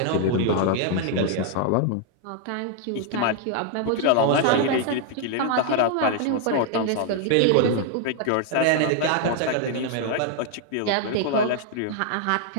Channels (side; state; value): both; different; correlation 0.00